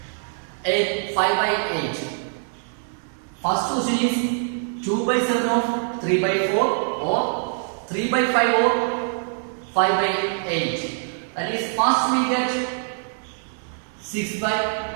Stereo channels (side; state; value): left; silent; 63 dB below the other